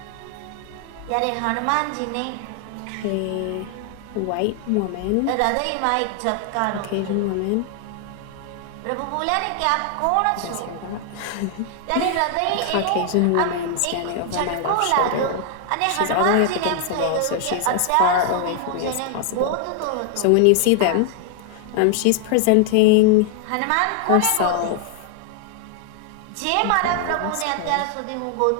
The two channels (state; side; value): different; both; correlation 0.00